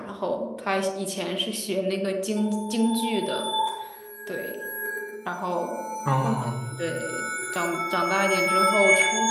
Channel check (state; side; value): identical; both; correlation 1.00